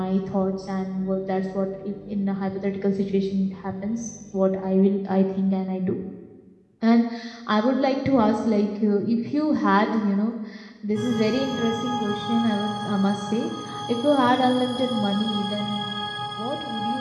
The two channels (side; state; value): both; identical; correlation 1.00